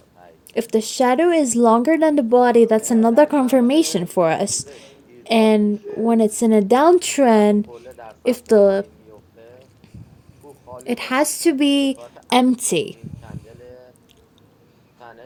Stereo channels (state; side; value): identical; both; correlation 1.00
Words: If the shadow is longer than the body, that's another confirmation for us. And when it's in a downtrend, if the it has to be empty.